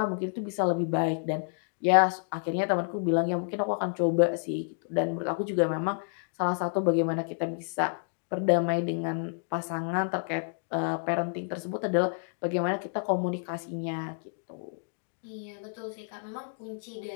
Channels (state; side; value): silent; right; digital silence